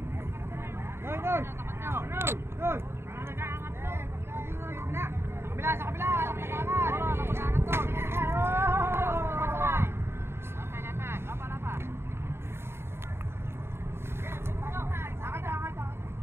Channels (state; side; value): late; left; 0.12 ms